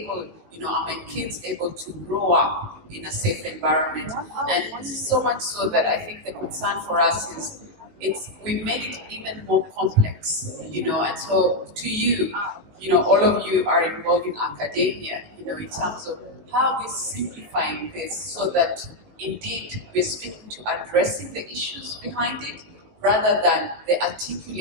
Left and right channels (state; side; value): late; left; 19 ms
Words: are my kids able to grow up in a safe environment? And so much so that I think the concern for us is we made it even more complex, and so to you, all of you are involved in academia, in terms of how we're simplifying this so that indeed we're speaking to addressing the issues behind it, rather than the